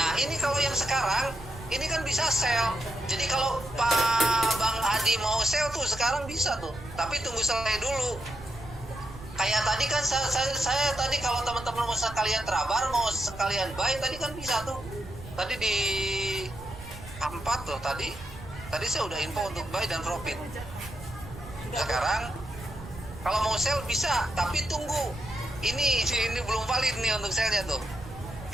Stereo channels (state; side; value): noise; right; rumble, 15 dB below the sound